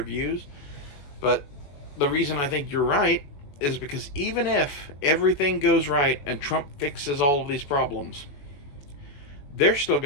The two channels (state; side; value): late; right; 21 ms